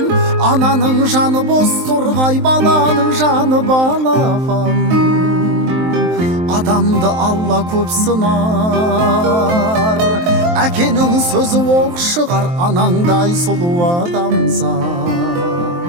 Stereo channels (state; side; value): late; left; 23 ms